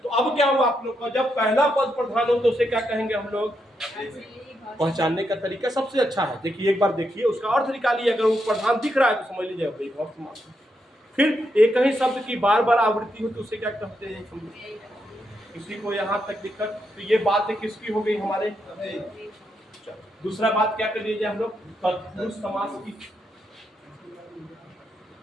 अब क्या हुआ आप लोग का? जब पहला पद प्रधान हो तो उसे क्या कहेंगे हम लोग? पहचानने का तरीका सबसे अच्छा है, देखिए एक बार देखिए उसका अर्थ निकालिए, अगर वो प्रधान दिख रहा है तो समझ लीजिए अव्ययी भाव समास। फिर एक ही शब्द की बार बार आवृत्ति हो तो उसे क्या कहते हैं? किसी को यहाँ तक दिक्कत? तो ये बात किसकी हो गई हमारे? दूसरा बात क्या कर लीजिए हम लोग? तत्पुरुष समास की।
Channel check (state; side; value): normal; both; correlation 0.81